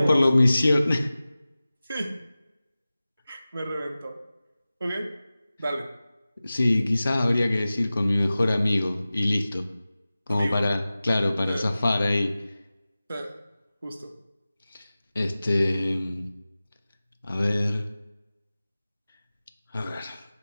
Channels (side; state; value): both; inverted; correlation -0.97